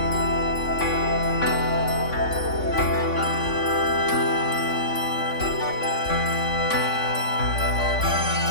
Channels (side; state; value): right; late; 3.5 ms